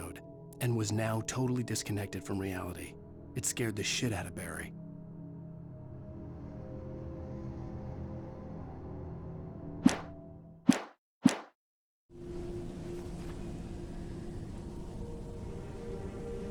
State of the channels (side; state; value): both; identical; correlation 1.00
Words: and was now totally disconnected from reality. It scared the shit out of Barry.